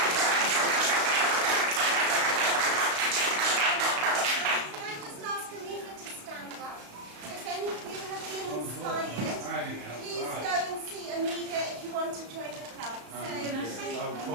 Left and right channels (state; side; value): late; left; 35 ms